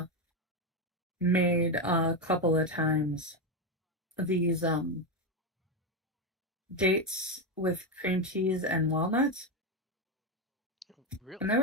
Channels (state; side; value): normal; both; correlation 0.10